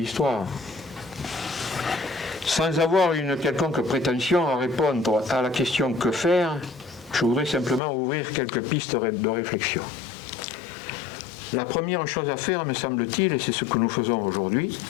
Sans avoir une quelconque prétention à répondre à la question que faire, je voudrais simplement ouvrir quelques pistes de réflexion. La première chose à faire, me semble-t-il, et c'est ce que nous faisons aujourd'hui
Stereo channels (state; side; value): drops out; right; at 7.8 s